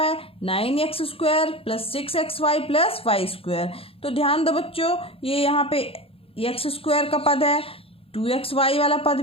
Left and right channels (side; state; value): right; late; 0.27 ms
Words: 9x² + 6xy + y²। तो ध्यान दो बच्चों, ये यहाँ पे x² का पद है, 2xy वाला पद